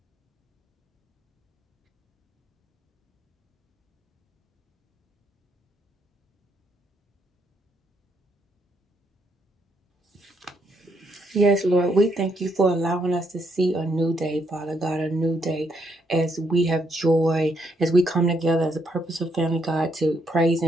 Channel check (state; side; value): normal; both; correlation 0.74